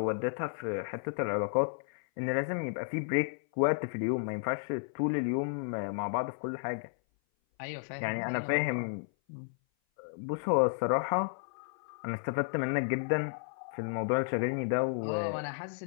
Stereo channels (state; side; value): silent; right; 56 dB below the other